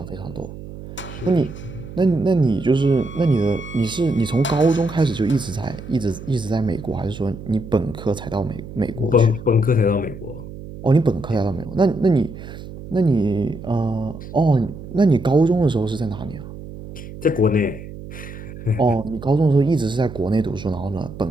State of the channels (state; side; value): noise; right; hum, 13 dB below the sound